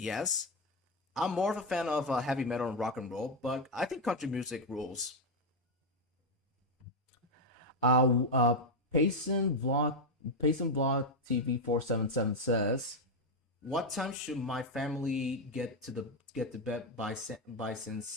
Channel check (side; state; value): both; normal; correlation 0.04